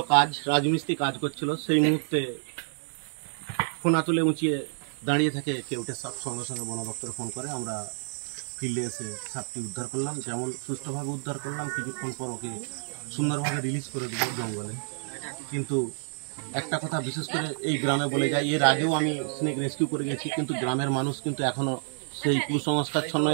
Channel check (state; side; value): silent; left; 59 dB below the other